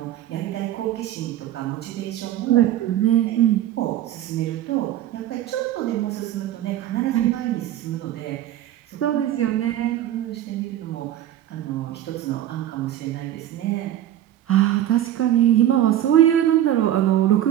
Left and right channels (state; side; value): quieter; left; 12.3 dB